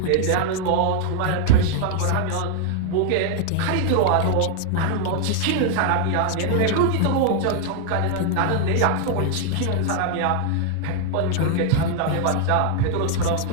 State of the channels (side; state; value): both; different; correlation 0.00